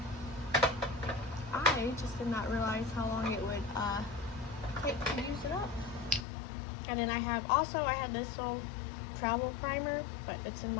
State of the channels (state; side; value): drops out; right; at 6.2 s